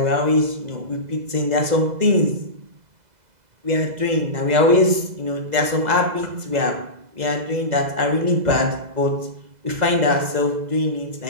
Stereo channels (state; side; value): late; left; 2.0 ms